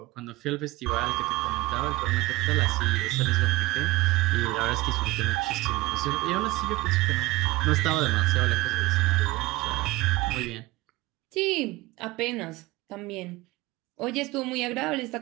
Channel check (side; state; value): left; quieter; 19.7 dB